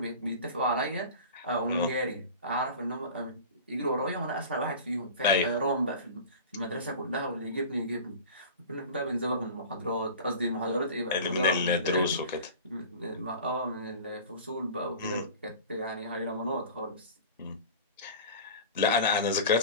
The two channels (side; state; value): both; inverted; correlation -0.37